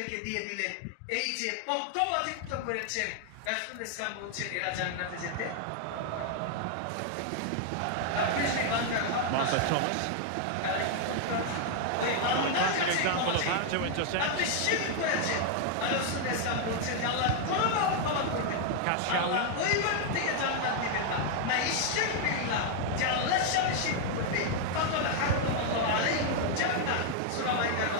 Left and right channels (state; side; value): different; both; correlation 0.00